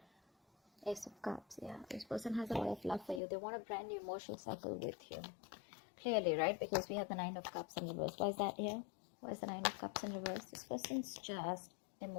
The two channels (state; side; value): drops out; right; at 3.2 s